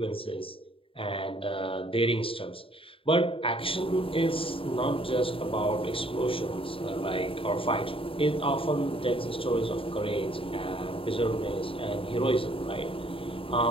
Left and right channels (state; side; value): late; right; 0.26 ms